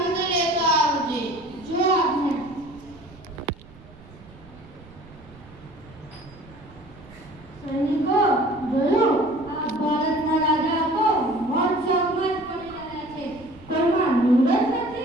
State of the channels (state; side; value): noise; right; rumble, 22 dB below the sound